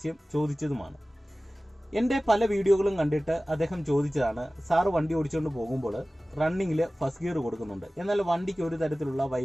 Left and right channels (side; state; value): both; normal; correlation 0.97